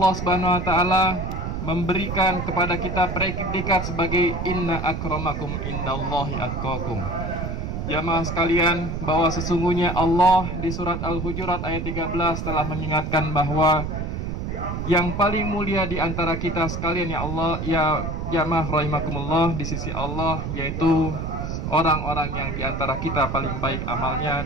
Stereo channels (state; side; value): noise; right; rumble, 4 dB below the sound